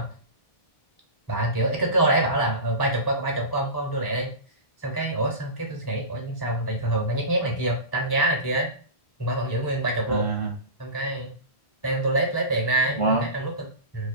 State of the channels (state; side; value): late; right; 1.0 ms